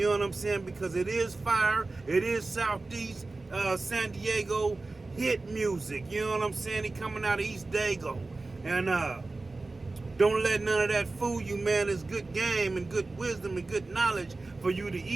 know what I'm saying? Because it is fire. It is Southeast San Diego hit music. You know what I'm saying? He coming out of East Dago. And don't let none of that fool you, man. It's good game and good wisdom and good knowledge for you to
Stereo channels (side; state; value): left; quieter; 3.4 dB